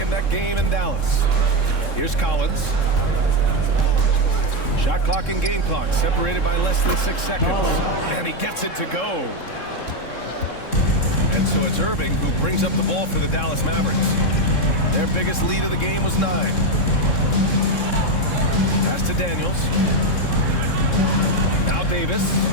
game in Dallas. Here's Collins. Shot clock and game clock separated by less than 6 seconds. And he gets it to go. And so it's Irving who brings up the ball for the Dallas Mavericks. Their biggest lead of the game was 9. Pass to Daniels. Now Davis.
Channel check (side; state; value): right; late; 3.7 ms